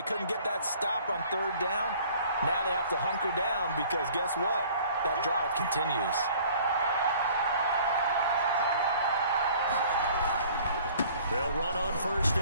couldn't get that stop on 3rd down. Now they have to hunker down because guess what? That drive continues. They'll run on 1st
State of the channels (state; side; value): inverted; both; correlation -0.52